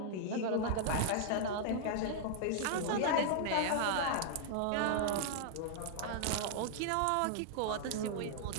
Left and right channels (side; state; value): both; different; correlation -0.01